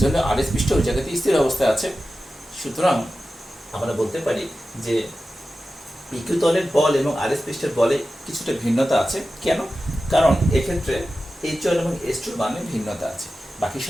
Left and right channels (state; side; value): normal; both; correlation 0.93